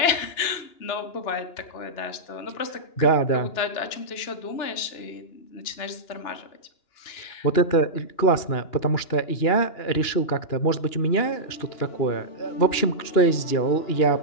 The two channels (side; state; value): right; late; 2.9 ms